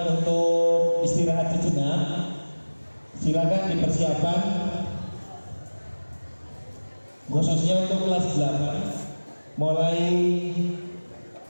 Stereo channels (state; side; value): inverted; both; correlation -1.00